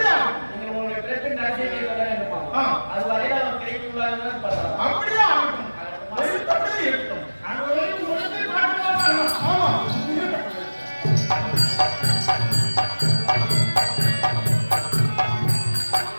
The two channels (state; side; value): inverted; both; correlation -1.00